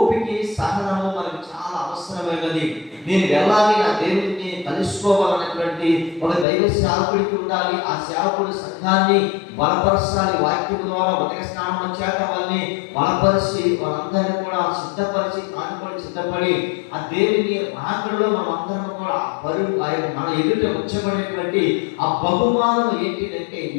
సహనము మనకు చాలా అవసరమైనది. నేను వెళ్ళాలి, నా దేవుడిని కలుసుకోవాలన్నటువంటి ఒక దైవ సేవకుడికి ఉండాలి. ఆ సేవకుడు సంఘాన్ని బలపరచాలి, వాక్యం ద్వారా ఉదక స్నానం చేత వాళ్ళని బలపరిచి వాళ్ళందరినీ కూడా సిద్ధపరిచి, తాను కూడా సిద్ధపడి ఆ దేవుని రాకడలో మనం అందరం కూడా పరుగు మన ఎదుట ఉంచబడినటువంటి ఆ బహుమానం ఏంటిదంటే,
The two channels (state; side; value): drops out; right; at 6.5 s